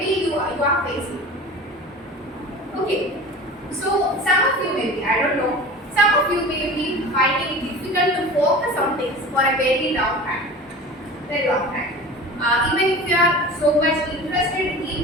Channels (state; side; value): normal; both; correlation 0.36